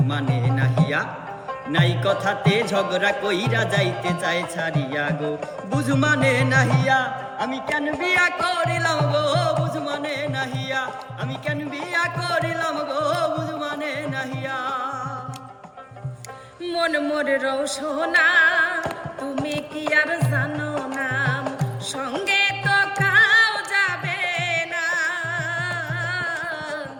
মানে নাহিয়া, নাই কথাতে ঝগড়া কইরা যাইতে চায় ছাড়িয়া গো বুঝু মানে নাহিয়া। আমি কেন বিয়া করিলাম গো বুঝু মানে নাহিয়া, আমি কেন বিয়া করিলাম গো বুঝু মানে নাহিয়া। মন মোর রৌসোনা তুমি কি আর জানো না, সঙ্গে তো কাউ যাবে না,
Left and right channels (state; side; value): identical; both; correlation 1.00